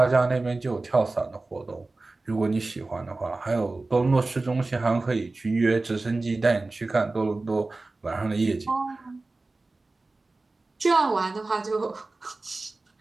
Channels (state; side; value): quieter; left; 3.3 dB